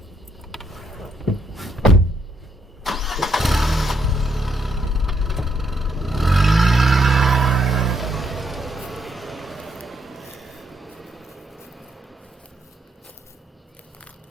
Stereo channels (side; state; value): both; normal; correlation 0.74